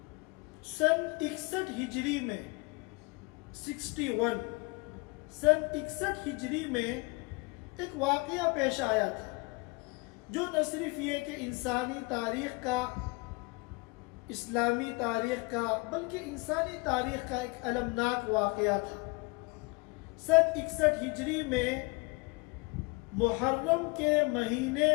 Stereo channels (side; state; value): right; quieter; 27.7 dB